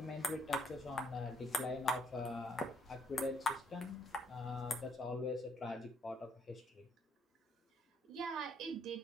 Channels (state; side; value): normal; both; correlation 0.69